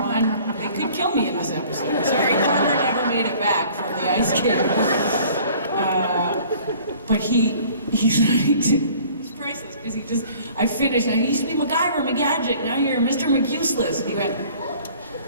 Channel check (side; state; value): both; inverted; correlation -0.51